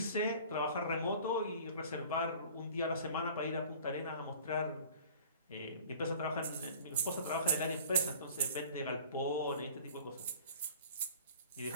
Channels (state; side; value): inverted; both; correlation -0.44